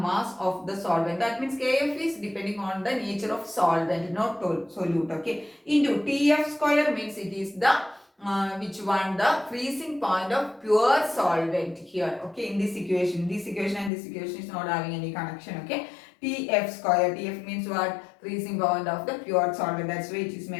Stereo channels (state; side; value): drops out; right; at 13.9 s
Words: of the solvent. That means Kf is depending on the nature of solvent, not solute. Okay. Into Tf square means it is the which one? The freezing point of pure solvent here. Okay. In this equation and this equation is not having any connection. Okay. Tf square. Tf means what? Freezing point of the pure solvent. That's why it is